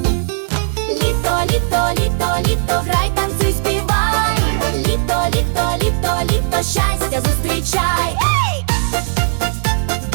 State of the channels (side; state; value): left; silent; 68 dB below the other